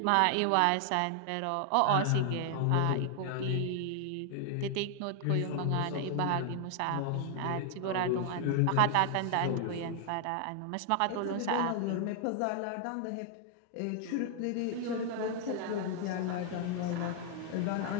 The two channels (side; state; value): both; different; correlation 0.00